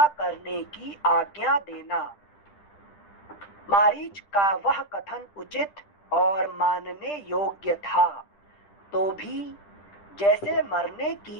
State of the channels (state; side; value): late; right; 10 ms